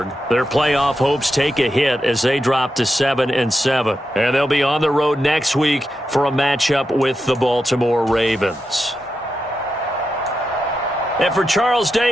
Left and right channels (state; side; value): normal; both; correlation 0.87